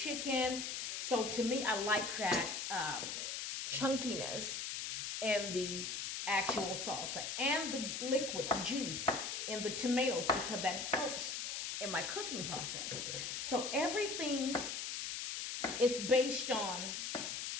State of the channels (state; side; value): noise; left; hiss, 3 dB below the sound